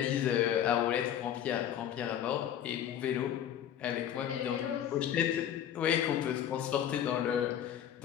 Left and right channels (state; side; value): quieter; right; 10.1 dB